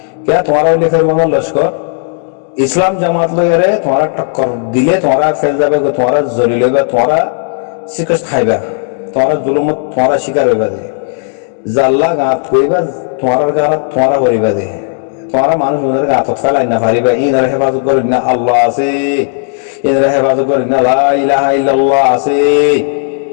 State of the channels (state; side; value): silent; right; digital silence